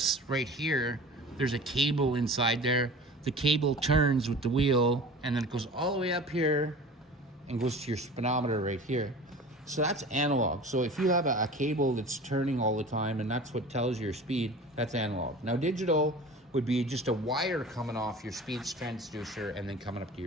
right here, there's a cable inside there. The cable turns with the wheel and then it goes all the way up here and goes to your speedometer right here. So that's analog. So if you have a cable that's turning all the time and that's what tells your speed, that's analog. Now digital would be just a wire coming off your speed transducer and then coming up to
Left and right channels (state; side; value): normal; both; correlation 0.39